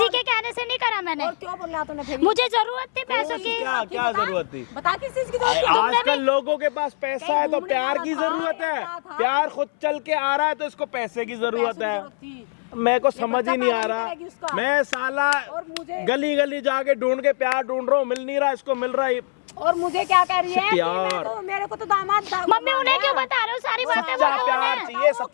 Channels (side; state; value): right; silent; 64 dB below the other